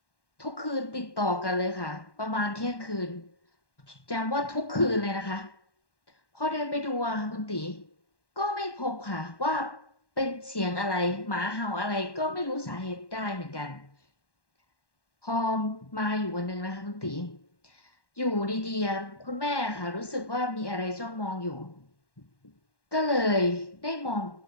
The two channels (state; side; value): late; right; 1.1 ms